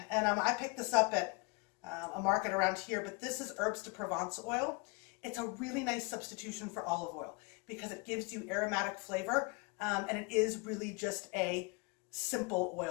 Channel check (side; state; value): right; quieter; 29.7 dB